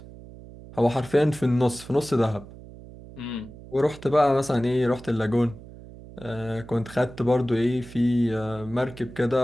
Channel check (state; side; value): noise; right; hum, 17 dB below the sound